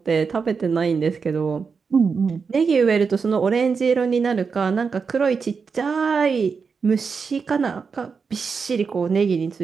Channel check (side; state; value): left; quieter; 5.4 dB